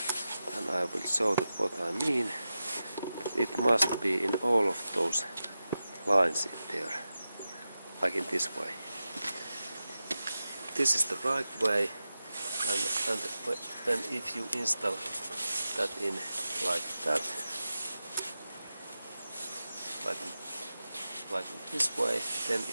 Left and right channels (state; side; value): inverted; both; correlation -0.92